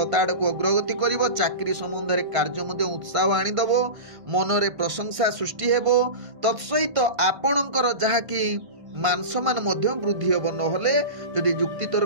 आड़कू अग्रगति करिवो। चाकरी संबंध रे कार्य मध्ये उत्साह आनिदबो। मनरे प्रशंसा सृष्टि हेबो। तत्सहित आपणकर जहाँकि मान सम्मान मध्य वृद्धि हेबो। नहले जदि जुक्ति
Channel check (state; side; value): late; left; 1.5 ms